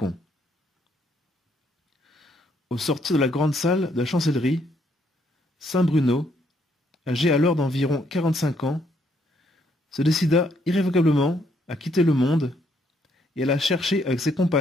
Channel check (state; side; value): normal; both; correlation 0.71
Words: Au sortir de la grande salle de la chancellerie, saint Bruno, âgé alors d'environ 45 ans, se décida irrévocablement à quitter le monde et alla chercher avec ses